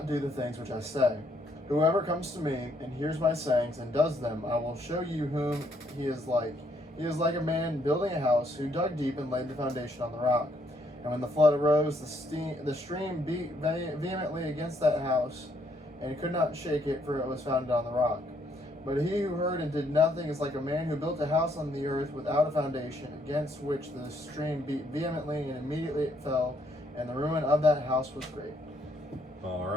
do the things which I say? Whoever comes to me and hears my sayings and does them, I will show you whom he is like. He is like a man building a house who dug deep and laid the foundation on the rock. And when the flood arose, the stream beat vehemently against that house, and could not shake it, for it was founded on the rock. But he who heard and did nothing is like a man who built a house on the earth without a foundation, against which the stream beat vehemently, and immediately it fell, and the ruin of that house was great. All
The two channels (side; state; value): both; normal; correlation 0.71